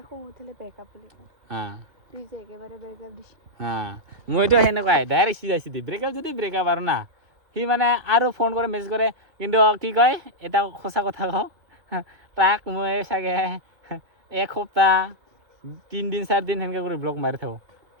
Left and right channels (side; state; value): left; late; 2.7 ms